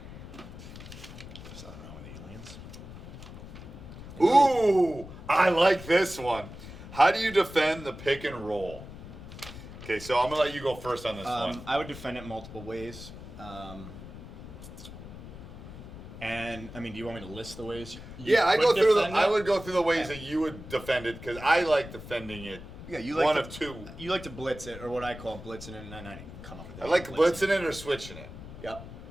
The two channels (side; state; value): left; noise; rumble, 13 dB below the sound